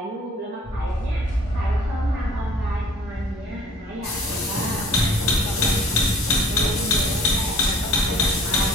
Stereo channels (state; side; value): normal; both; correlation 0.51